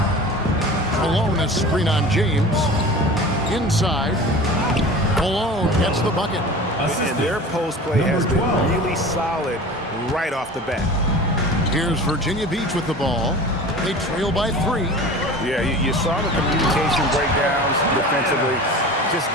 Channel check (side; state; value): both; normal; correlation 0.37